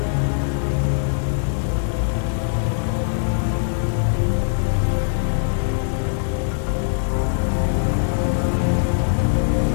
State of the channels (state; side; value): silent; right; digital silence